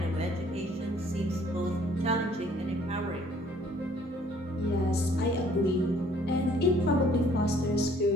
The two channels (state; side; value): normal; both; correlation 0.59